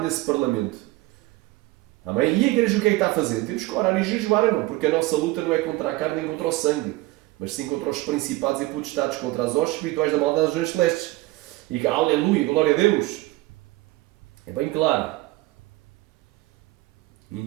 nesse Parlamento. Amém? E a igreja o que é que está fazendo? Temos que orar e jejuar, não? Porque a nossa luta não é contra a carne nem contra o sangue, mas sim contra os principados e potestades, contra as hostes espirituais da maldade das regiões celestes. E que, aleluia, glória a Deus. É bem claro.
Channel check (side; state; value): left; quieter; 19.4 dB